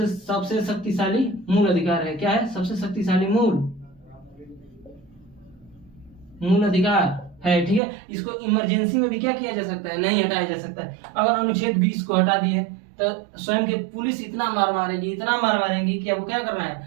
मूल अधिकार है। क्या है? सबसे शक्तिशाली मूल अधिकार है, ठीक है। इसको इमरजेंसी में भी क्या किया जा सकता है? नहीं हटाया जा सकता है। अगर अनुच्छेद 20 को हटा दिए तो स्वयं के पुलिस इतना मार मारेगी कि आपको क्या करना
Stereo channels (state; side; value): drops out; left; at 7.8 s